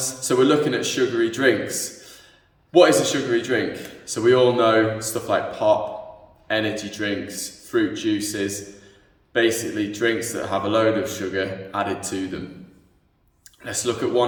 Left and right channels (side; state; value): both; identical; correlation 1.00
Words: So we're looking at sugary drinks. What is a sugary drink? So we all know stuff like pop, energy drinks, fruit juices, basically drinks that have a load of sugar added to them. Let's look at one